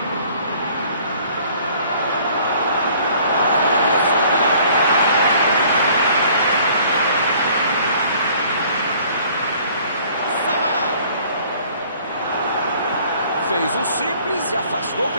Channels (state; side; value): inverted; both; correlation -0.55